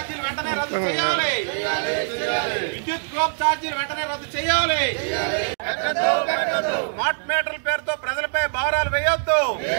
వెంటనే రద్దు చేయాలి. విద్యుత్ డ్రాప్ ఛార్జీలు వెంటనే రద్దు చేయాలి. స్మార్ట్ మీటర్ల పేరుతో ప్రజలపై భారాలు వేయొద్దు.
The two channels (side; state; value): left; silent; digital silence